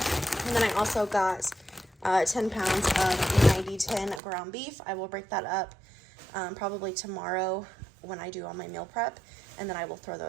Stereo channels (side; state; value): left; drops out; at 4.2 s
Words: And then I also got 10 pounds of 90-10 ground beef. I will break that up probably tomorrow when I do all my meal prep, and then I will throw